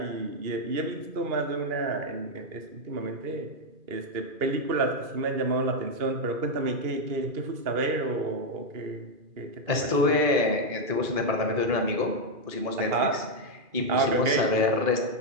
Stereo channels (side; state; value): left; late; 2.4 ms